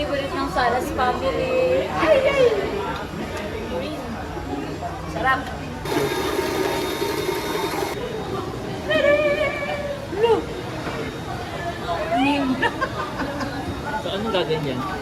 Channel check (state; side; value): identical; both; correlation 1.00